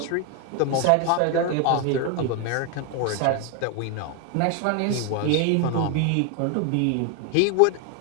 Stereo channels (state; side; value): different; both; correlation 0.01